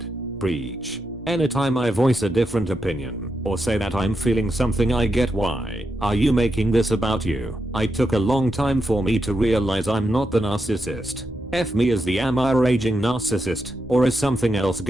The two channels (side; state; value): both; normal; correlation 0.85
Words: Preach. Anytime I voice a different opinion, or say that I'm feeling something, I get why are you making this about you? I took a long time for me to realize I'm not the narcissist. F me as the am I raging narcissist, or is something else